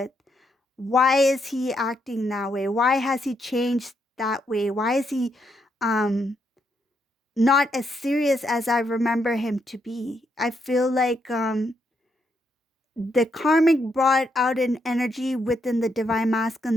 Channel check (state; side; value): normal; both; correlation 0.78